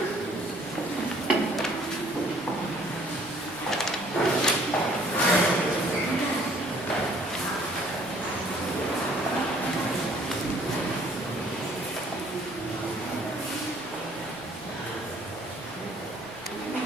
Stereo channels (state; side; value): normal; both; correlation 0.58